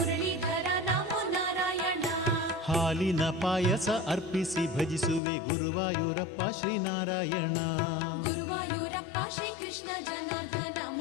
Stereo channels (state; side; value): drops out; right; at 5.2 s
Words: ನಮೋ ನಾರಾಯಣ. ಹಾಲಿನ ಪಾಯಸ ಅರ್ಪಿಸಿ ಭಜಿಸುವೆ ಗುರುವಾಯೂರಪ್ಪ ಶ್ರೀನಾರಾಯಣ. ಗುರುವಾಯೂರಪ್ಪ ಶ್ರೀಕೃಷ್ಣ ಜನಾರ್ದನ